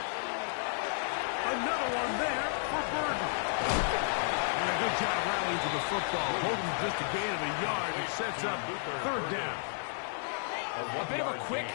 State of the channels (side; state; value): right; silent; digital silence